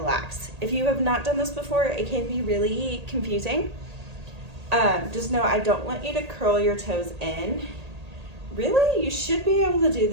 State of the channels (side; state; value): left; late; 1.8 ms